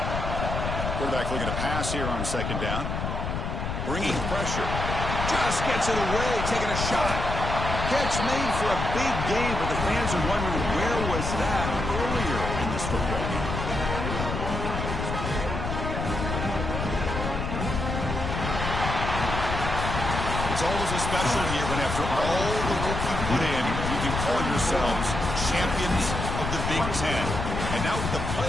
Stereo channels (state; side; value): noise; left; rumble, 3 dB below the sound